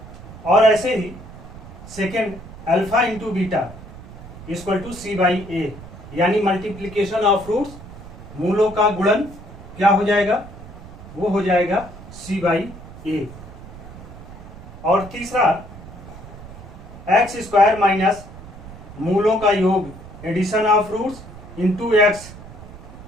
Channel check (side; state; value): right; noise; rumble, 15 dB below the sound